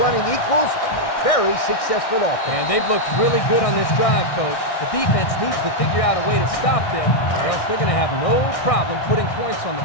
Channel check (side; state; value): right; late; 1.6 ms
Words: equals a very successful offense. And they've looked really good on this drive, Coach. The defense needs to figure out a way to stop them, or else they're going to have no problem putting points on the